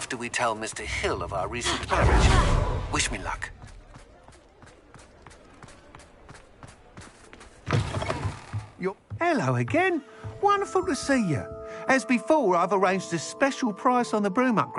we tell Mr. Hill of our recent marriage. Wish me luck. Hello again. Wonderful to see you. As before, I've arranged a special price on the broom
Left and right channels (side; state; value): both; identical; correlation 1.00